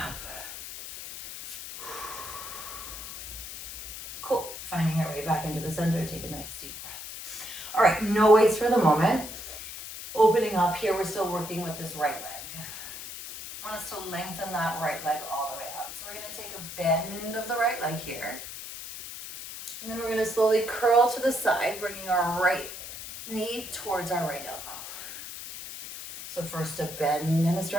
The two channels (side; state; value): left; noise; hiss, 10 dB below the sound